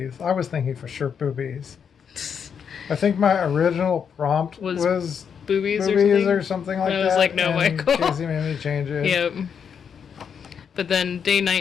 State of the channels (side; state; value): right; quieter; 7.2 dB